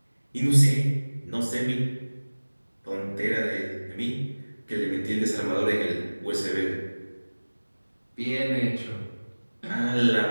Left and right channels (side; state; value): both; inverted; correlation -1.00